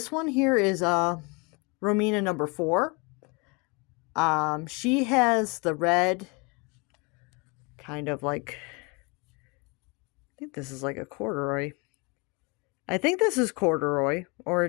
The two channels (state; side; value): quieter; right; 30.0 dB